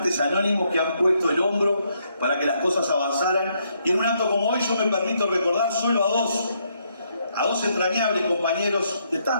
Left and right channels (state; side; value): inverted; both; correlation -0.74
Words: anónimos que han puesto el hombro para que las cosas avanzaran. Y en un acto como hoy yo me permito recordar solo a dos entrañables compañeros de